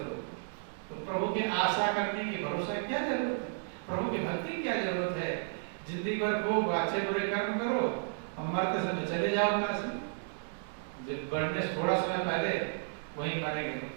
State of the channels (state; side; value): silent; left; digital silence